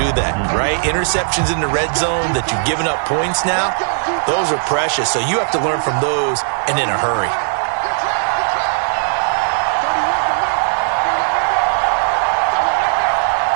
they? Right? Interceptions in the red zone that you've given up points now, those are precious. So you have to learn from those and in a hurry.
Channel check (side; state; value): left; silent; 68 dB below the other